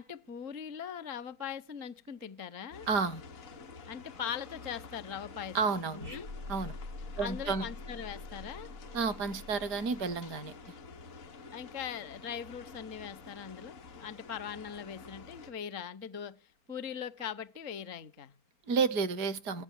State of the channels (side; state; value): left; late; 4.4 ms